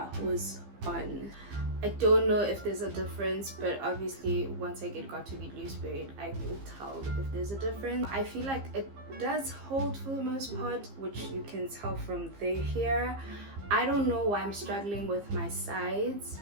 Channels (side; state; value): left; late; 15 ms